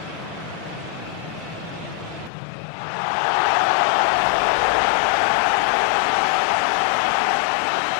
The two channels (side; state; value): right; drops out; at 2.3 s